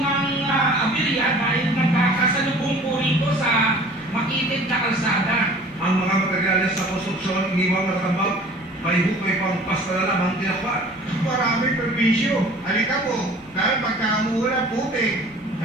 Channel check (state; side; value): normal; both; correlation 0.47